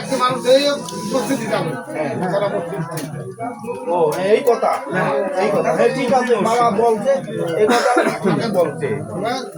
ও এই কথা এই কথা ঠিক আছে বাবা বলছে এই কথা আমাকে বলছে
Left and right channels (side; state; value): both; identical; correlation 1.00